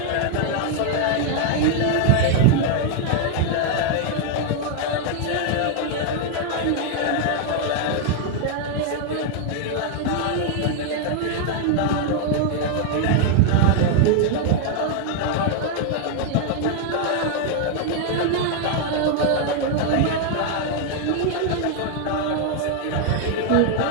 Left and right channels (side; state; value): both; different; correlation 0.00